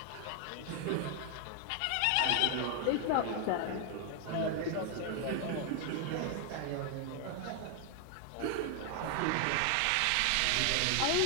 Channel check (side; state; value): both; different; correlation 0.00